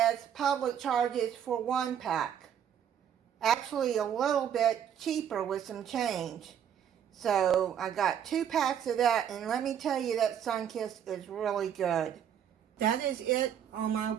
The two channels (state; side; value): quieter; left; 9.1 dB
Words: Public charges for 1 pack. Actually a little bit cheaper with some change. So I got 2 packs of that, and let me tell you, that Sun-Kissed is really good. That is it on my